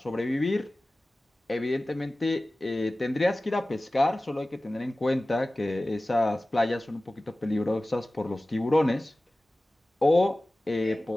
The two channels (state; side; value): normal; both; correlation 0.97